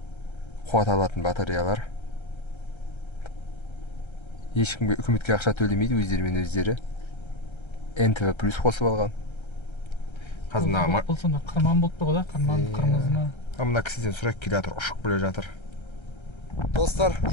қуат алатын батареялар. Ешкімге үкіметке ақша төлемейді, өздерімен өздері. НТВ плюс қосып алған. Қазір бұл сонда қырман болып тұр ғой, қырмызы ма? Мына кісіден сұрайық, келе жатыр, ұшып келе жатыр. Достар,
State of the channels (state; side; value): late; right; 1.3 ms